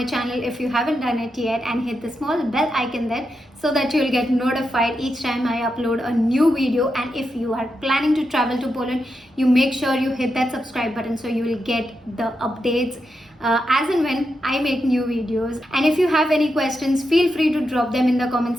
channel if you haven't done it yet, and hit the small bell icon there so that you'll get notified each time I upload a new video. And if you are planning to travel to Poland, you make sure you hit that subscribe button so you will get the updates as and when I make new videos. And if you have any questions, feel free to drop them in the comment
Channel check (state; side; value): normal; both; correlation 0.86